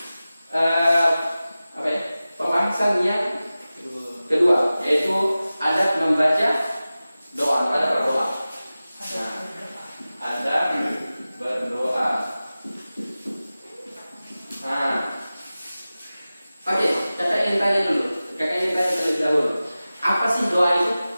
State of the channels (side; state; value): both; inverted; correlation -0.96